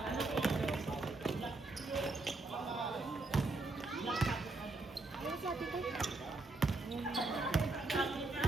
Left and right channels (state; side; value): quieter; left; 3.2 dB